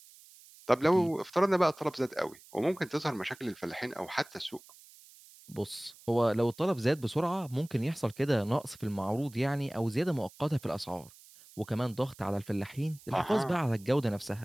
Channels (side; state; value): right; noise; hiss, 23 dB below the sound